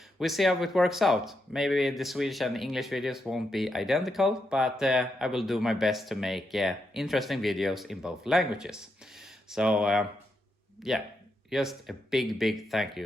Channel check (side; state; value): both; normal; correlation 0.83